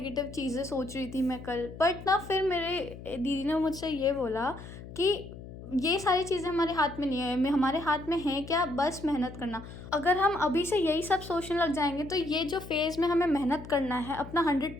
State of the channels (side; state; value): left; noise; hum, 14 dB below the sound